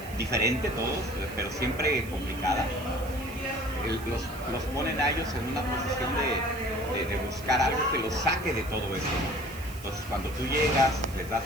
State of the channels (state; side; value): noise; right; hiss, 17 dB below the sound